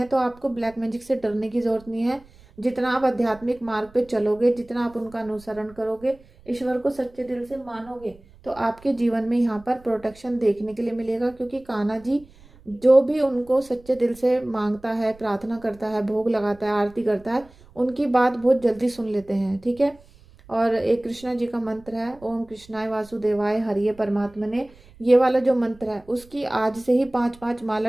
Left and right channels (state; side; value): noise; right; rumble, 25 dB below the sound